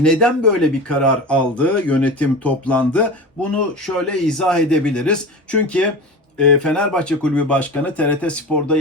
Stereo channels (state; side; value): normal; both; correlation 0.30